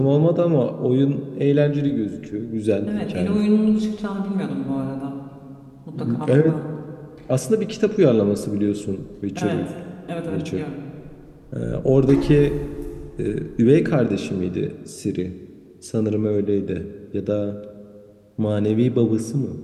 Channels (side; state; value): both; identical; correlation 1.00